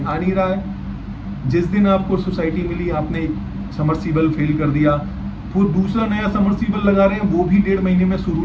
आ नहीं रहा है। जिस दिन आपको सोसाइटी मिली आपने समरसीबल फेल कर दिया, वो दूसरा नया समरसीबल लगा रहे हैं, वो भी 1.5 महीने में शुरू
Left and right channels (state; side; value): identical; both; correlation 1.00